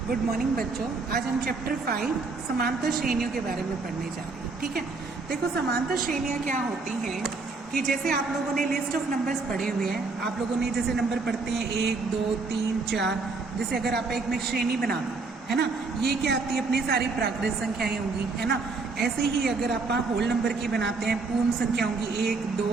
Good morning बच्चों। आज हम चैप्टर 5 समांतर श्रेणियों के बारे में पढ़ने जा रहे हैं। ठीक है, देखो समांतर श्रेणियां क्या होती हैं कि जैसे आप लोगों ने लिस्ट ऑफ नंबर्स पढ़े हुए हैं, आप लोगों ने जैसे नंबर पढ़ते हैं 1 2 3 4, जैसे अगर आप एक में श्रेणी बना दो है ना, ये क्या आती है अपनी सारी प्राकृत संख्याएं होंगी है ना। ऐसे ही अगर आप होल नंबर की बनाते हैं पूर्ण संख्या होंगी 1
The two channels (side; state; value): left; quieter; 4.0 dB